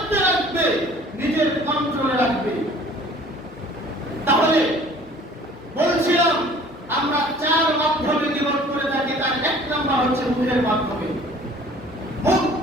রাখবে, নিজের কন্ট্রোলে রাখবে। তাহলে বলছিলাম আমরা চার মাধ্যমে জীবন করে থাকি। তার এক নম্বর হচ্ছে মুখের মাধ্যমে।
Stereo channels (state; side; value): normal; both; correlation 0.50